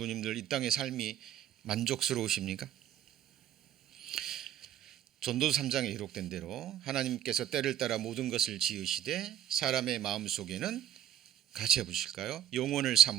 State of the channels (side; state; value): left; quieter; 10.8 dB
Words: 이 땅의 삶이 만족스러우십니까? 전도서 3장에 기록된 대로 하나님께서 때를 따라 모든 것을 지으시되 사람의 마음속에는 같이 해보실까요? 영원을